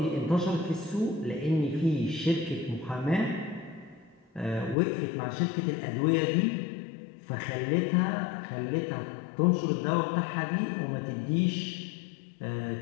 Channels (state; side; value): drops out; right; at 4.8 s